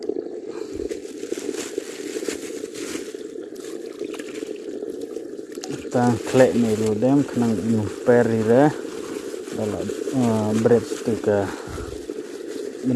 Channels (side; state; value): both; identical; correlation 1.00